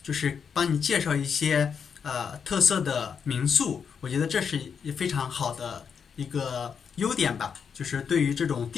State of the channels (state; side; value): quieter; right; 6.7 dB